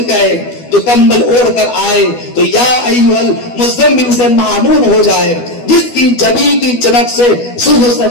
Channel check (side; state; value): right; late; 12 ms